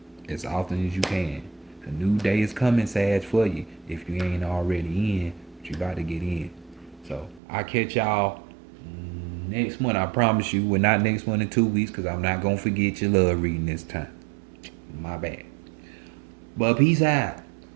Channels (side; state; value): left; drops out; at 7.4 s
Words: as often as you can. A new day is coming, Sag, for you. If you ain't already in, but you about to get in. So, I'll catch y'all next month. I promise you, we're not next month in 2 weeks because I'm not going to forget your love reading this time. My bad. But peace out.